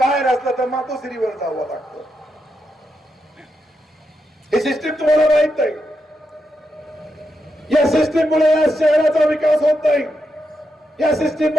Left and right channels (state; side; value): normal; both; correlation 0.84